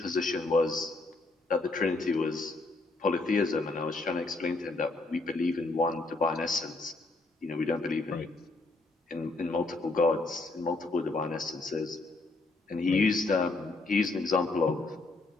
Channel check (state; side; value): quieter; right; 3.3 dB